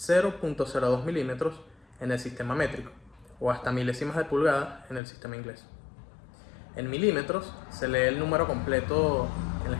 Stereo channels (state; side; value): drops out; right; at 5.0 s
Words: milímetros en el sistema métrico o hasta milésimas de pulgada en el sistema inglés. En milímetros se lee el número completo en la